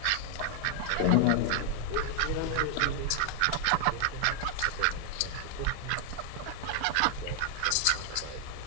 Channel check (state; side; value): different; both; correlation 0.00